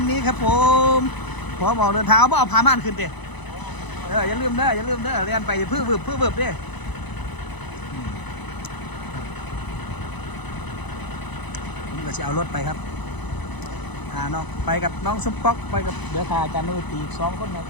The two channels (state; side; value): late; right; 1.0 ms